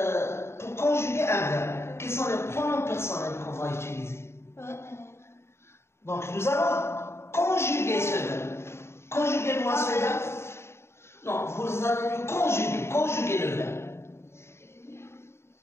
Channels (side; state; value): right; late; 0.12 ms